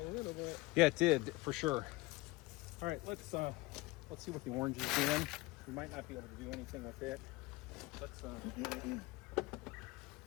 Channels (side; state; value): right; quieter; 22.0 dB